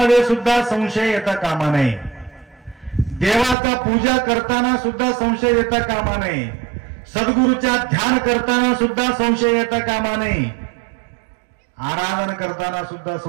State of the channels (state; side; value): drops out; left; at 3.6 s